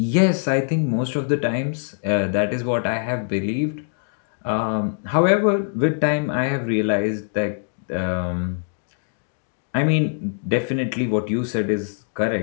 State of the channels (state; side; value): silent; right; digital silence